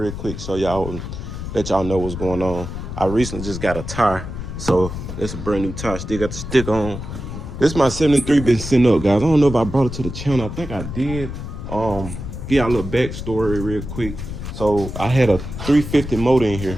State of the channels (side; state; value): left; noise; rumble, 8 dB below the sound